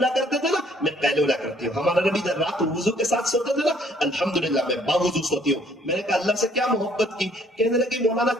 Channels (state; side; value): normal; both; correlation 0.62